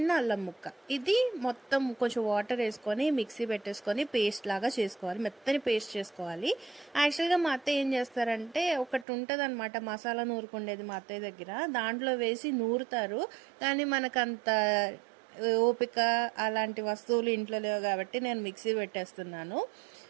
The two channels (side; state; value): left; drops out; at 9.1 s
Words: అల్లం ముక్క. ఇది మొత్తం కొంచెం వాటర్ వేసుకొని మిక్సీ పెట్టేసుకొని పేస్ట్ లాగా చేసుకోవాలి. మెత్తని పేస్ట్ చేసుకోవాలి. యాక్చువల్గా మా అత్తయ్య ఏం చేస్తారంటే, ఒకటి ఉంటుంది అనమాట మసాలా నూరుకుండేది మా అత్తయ్య దగ్గర, దాంట్లో వేసి నూరుతారు. కానీ మనకంత ఓపిక అలాంటి వస్తువులు ఇంట్లో లేవు కాబట్టి నేను మిక్సీ పెట్టేస్తున్నాను.